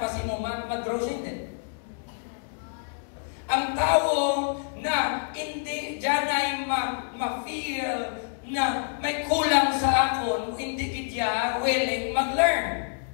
si mo mag-grow siya din. Ang tao na hindi dyan ay ma-feel na may kulang sa akon, hindi kitya willing mag-learn.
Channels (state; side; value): silent; right; digital silence